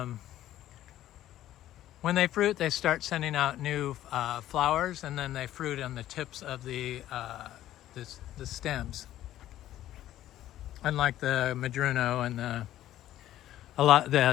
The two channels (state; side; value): quieter; right; 13.2 dB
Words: when they fruit, they start sending out new flowers, and then they fruit on the tips of the stems. Unlike the Madruno and the